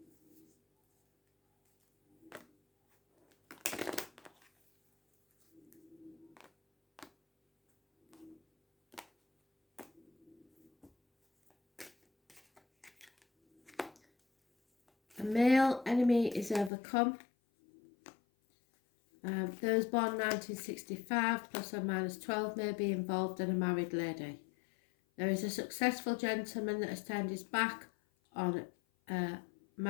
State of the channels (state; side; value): drops out; right; at 16.7 s